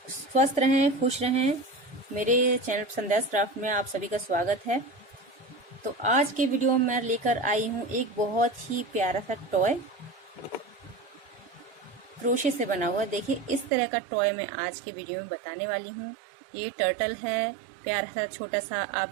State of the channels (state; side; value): drops out; left; at 13.7 s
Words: स्वस्थ रहें, खुश रहें। मेरे चैनल संध्या क्राफ्ट में आप सभी का स्वागत है। तो आज के वीडियो में मैं लेकर आई हूँ एक बहुत ही प्यारा सा टॉय, क्रोशे से बना हुआ। देखिए इस तरह का टॉय मैं आज के वीडियो में बताने वाली हूँ। ये टर्टल है, प्यारा सा छोटा सा। आप